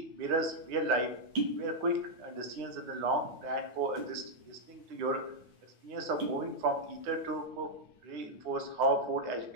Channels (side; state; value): left; late; 9.7 ms